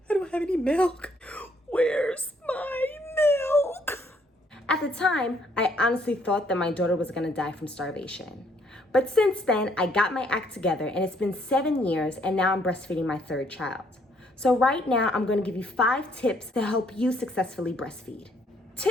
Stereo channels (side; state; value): both; normal; correlation 0.67